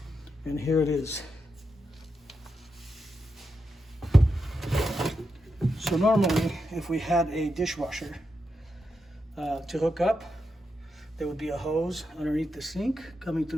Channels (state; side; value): normal; both; correlation 0.86